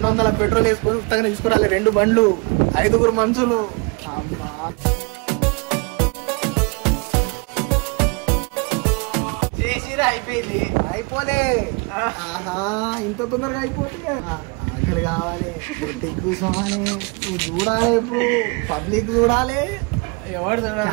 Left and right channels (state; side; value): quieter; left; 30.2 dB